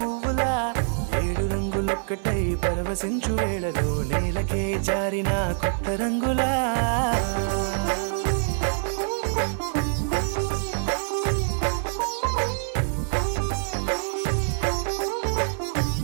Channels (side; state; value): left; silent; 60 dB below the other